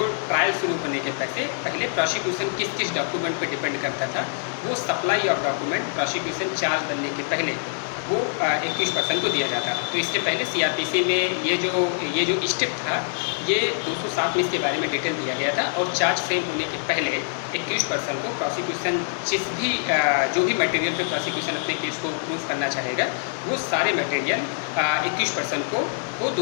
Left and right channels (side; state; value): right; silent; 62 dB below the other